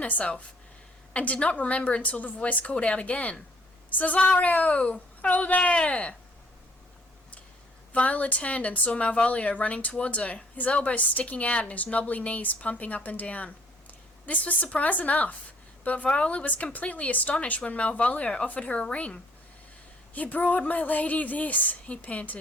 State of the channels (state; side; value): normal; both; correlation 0.61